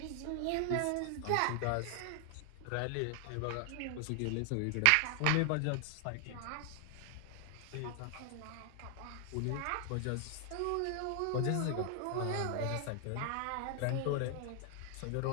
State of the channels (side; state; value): both; different; correlation 0.00